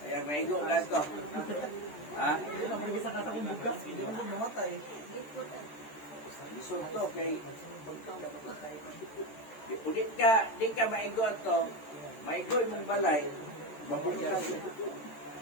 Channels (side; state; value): right; late; 13 ms